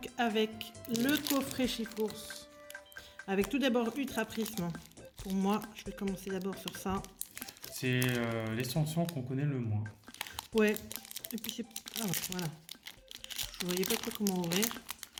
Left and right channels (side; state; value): both; identical; correlation 1.00